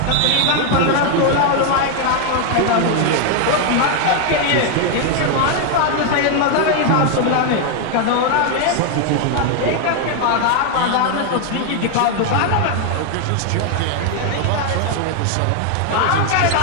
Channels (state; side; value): different; both; correlation 0.01